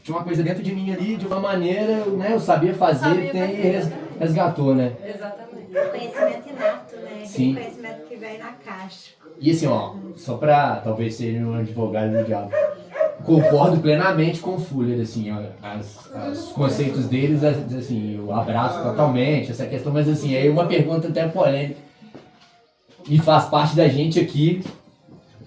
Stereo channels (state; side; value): identical; both; correlation 1.00